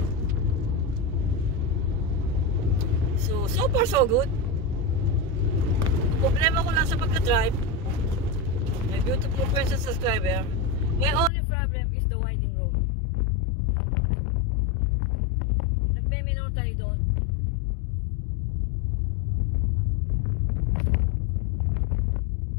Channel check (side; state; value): right; drops out; at 11.3 s